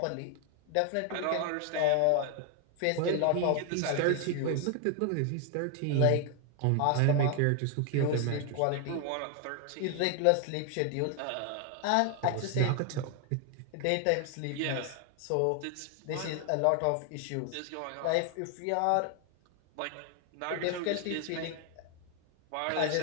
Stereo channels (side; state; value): both; different; correlation 0.00